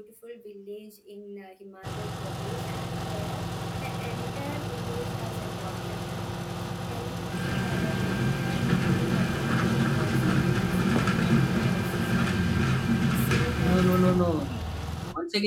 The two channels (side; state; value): both; identical; correlation 1.00